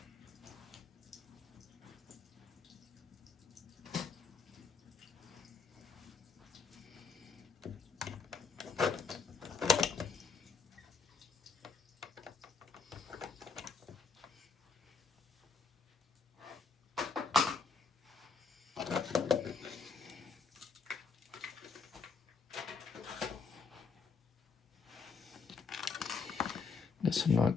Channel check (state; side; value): quieter; right; 4.9 dB